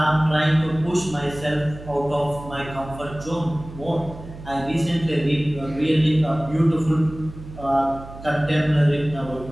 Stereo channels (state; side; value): noise; right; hum, 15 dB below the sound